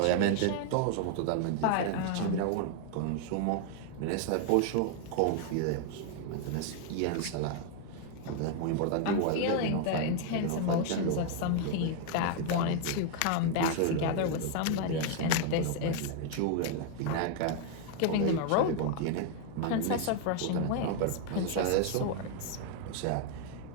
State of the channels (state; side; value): different; both; correlation 0.00